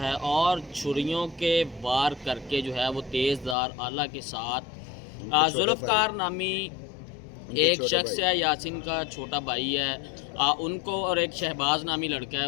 और छुरियों के वार करके जो है वो तेज़धार आला के साथ जुल्फ़कार नामी एक शख्स है, यासीन का छोटा भाई है, उनको और एक शहबाज नामी लड़का है,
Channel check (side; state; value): right; drops out; at 3.6 s